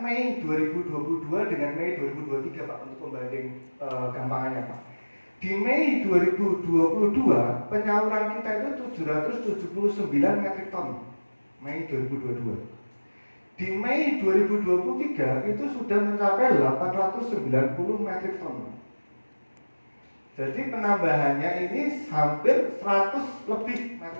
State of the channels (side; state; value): both; inverted; correlation -1.00